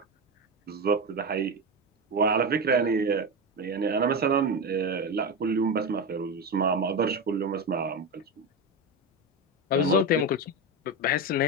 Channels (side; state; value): both; normal; correlation 0.16